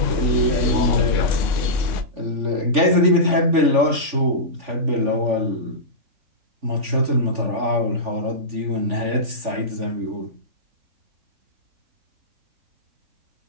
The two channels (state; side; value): late; left; 3.4 ms